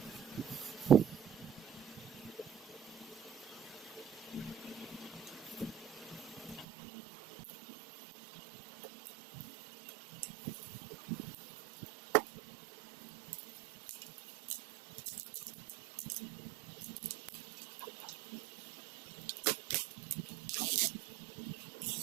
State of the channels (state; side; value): drops out; left; at 6.7 s